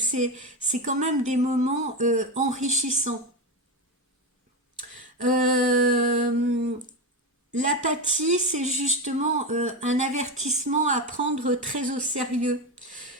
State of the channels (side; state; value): both; normal; correlation 0.15